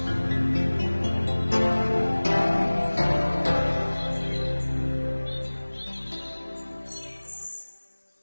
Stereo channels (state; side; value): inverted; both; correlation -1.00